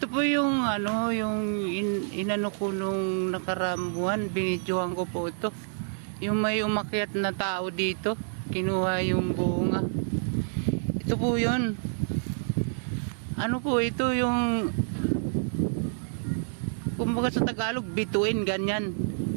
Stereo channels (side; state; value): left; silent; 59 dB below the other